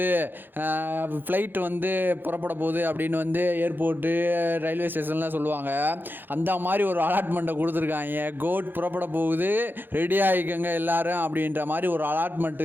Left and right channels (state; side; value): late; left; 0.095 ms